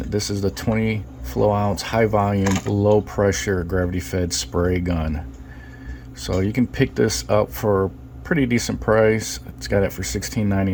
this is the 20 flow ounce high volume low pressure gravity fed spray gun. So you can pick this up for a pretty decent price. It's got it for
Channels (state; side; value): identical; both; correlation 1.00